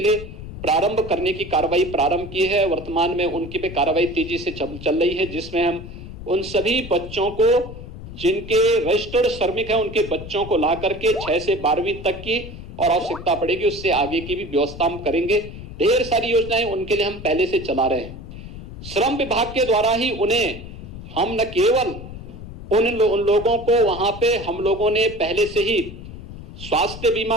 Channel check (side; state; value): left; noise; rumble, 12 dB below the sound